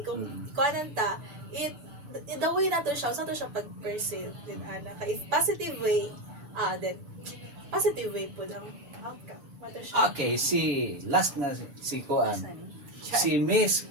kung kuanan ta, the way nato siya, sa to siya pag-perceive din ana. If positive way, then positive way po ang outcome. Mato siya. Okay, last na si Kuan. Si Miss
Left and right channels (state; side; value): late; left; 6.9 ms